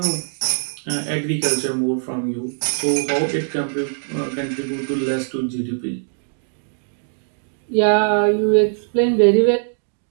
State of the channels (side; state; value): left; silent; digital silence